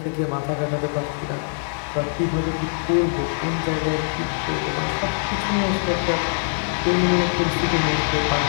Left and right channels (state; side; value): silent; right; 64 dB below the other